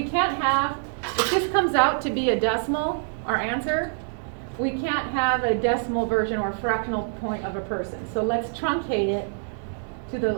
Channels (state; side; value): silent; left; digital silence